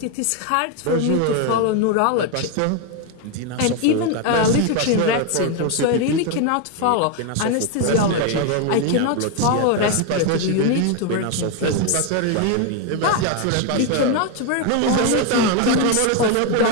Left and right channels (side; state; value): both; different; correlation 0.01